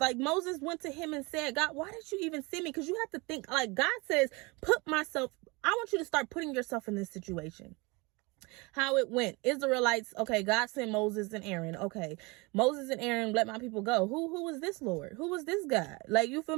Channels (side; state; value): left; quieter; 26.4 dB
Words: Moses went to him and said, God, why did you even send me? Because you have to think like God says, I want you to start putting yourself in this situation. How it went. Israelites, okay, God sent Moses and Aaron. Okay, Moses and Aaron let my people go. Who was this Lord? Who was this God? Like, you feel